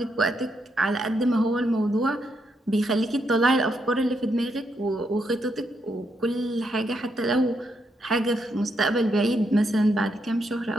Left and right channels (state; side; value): normal; both; correlation 0.79